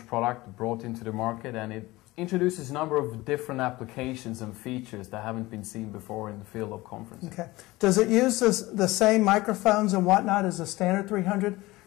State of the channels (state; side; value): quieter; right; 19.8 dB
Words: product brought into the market, and it introduces a number of different applications and features that haven't been seen before in the field of conferencing. Okay. Does it use the same microphones and whatnot as the standard 300?